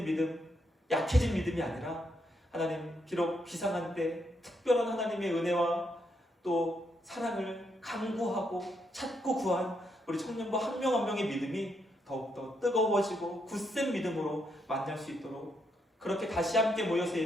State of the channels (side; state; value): both; normal; correlation 0.78